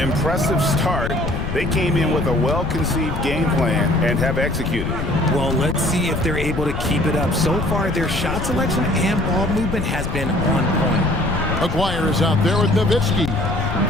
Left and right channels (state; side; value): noise; left; rumble, 4 dB below the sound